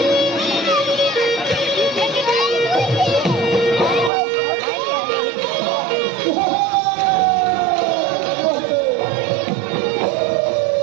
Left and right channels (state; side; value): drops out; left; at 4.1 s